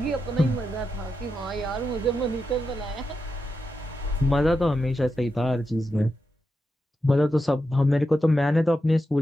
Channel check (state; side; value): normal; both; correlation 0.87